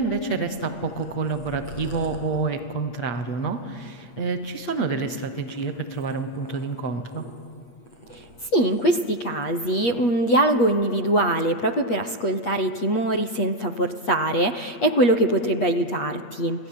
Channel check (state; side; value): late; right; 8.3 ms